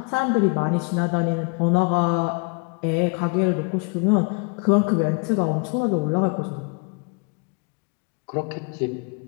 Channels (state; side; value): quieter; right; 33.0 dB